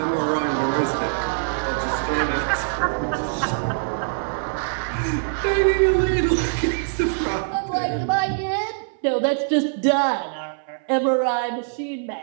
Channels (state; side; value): silent; left; 63 dB below the other